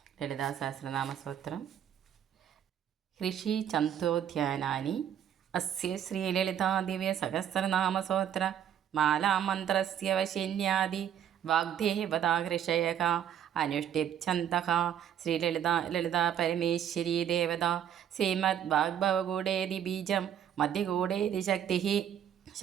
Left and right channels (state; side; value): quieter; left; 9.6 dB